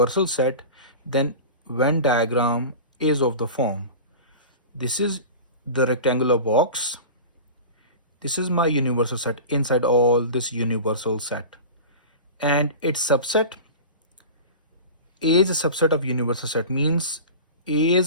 set, then Venn diagram is of the form. This is the rectangular box. This is my universal set inside all this universal set. And its subset, A is a subset of universal set, means A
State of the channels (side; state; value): both; inverted; correlation -0.33